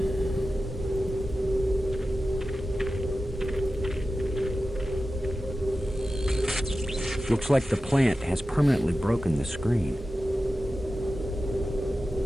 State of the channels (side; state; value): both; normal; correlation 0.93